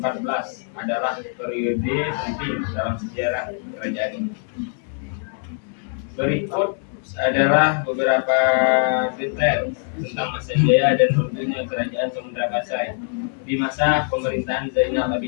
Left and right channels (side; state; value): right; silent; 64 dB below the other